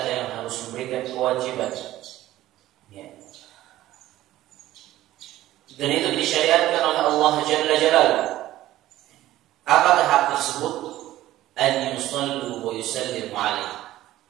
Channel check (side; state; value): left; quieter; 14.8 dB